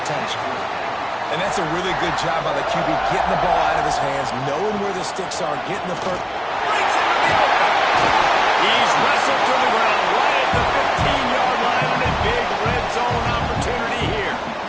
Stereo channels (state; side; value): identical; both; correlation 1.00